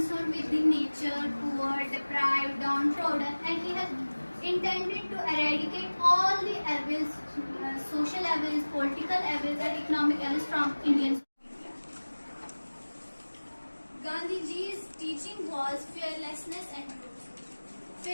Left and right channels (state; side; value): inverted; both; correlation -1.00